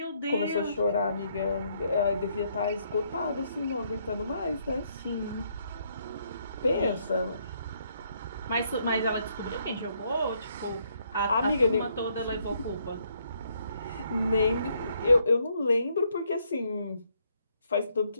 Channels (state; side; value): inverted; both; correlation -0.72